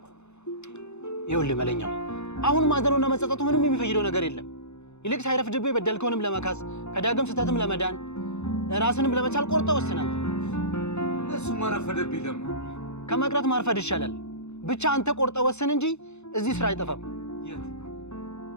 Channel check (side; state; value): right; late; 0.81 ms